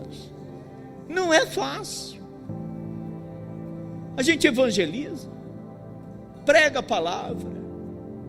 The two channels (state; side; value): identical; both; correlation 1.00